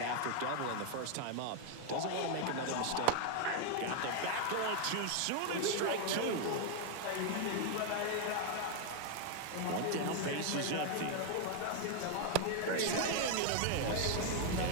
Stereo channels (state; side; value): different; both; correlation 0.01